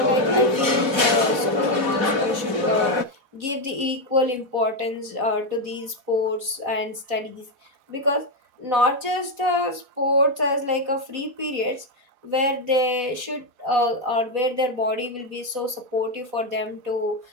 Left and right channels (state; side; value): late; left; 4.1 ms